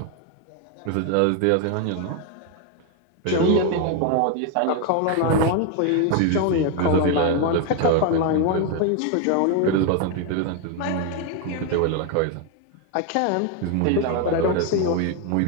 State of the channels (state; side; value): different; both; correlation 0.01